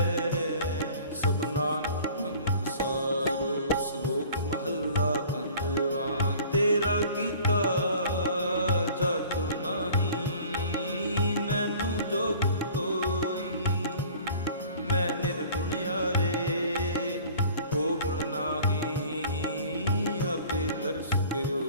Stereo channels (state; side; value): inverted; both; correlation -0.47